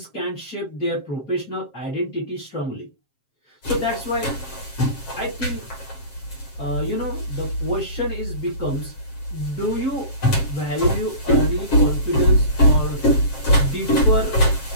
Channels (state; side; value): late; right; 7.5 ms